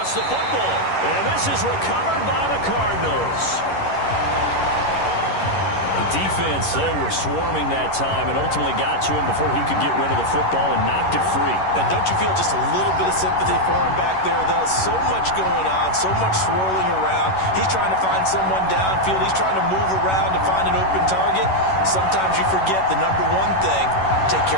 the football. And this is recovered by the Cardinals. The defense, they were swarming that time and ultimately got to him before he could get rid of the football and knocked it free. And don't you feel just a little bit of sympathy for him back there, though? So much going on, so much swirling around. He's trying to find someone downfield. He's trying to move around to find an open target. Sometimes you forget the number one thing, take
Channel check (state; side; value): late; right; 11 ms